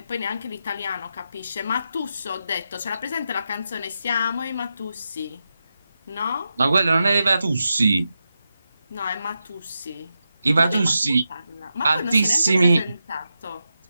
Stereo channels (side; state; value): both; inverted; correlation -0.88